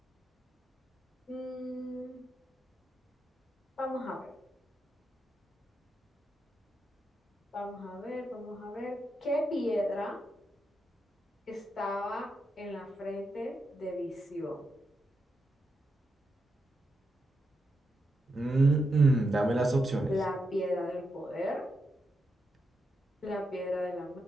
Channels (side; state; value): both; normal; correlation 0.84